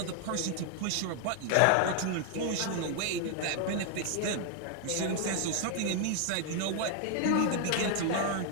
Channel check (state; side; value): different; both; correlation 0.00